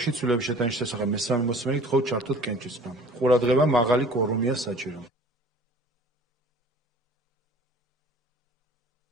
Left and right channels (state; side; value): normal; both; correlation 0.48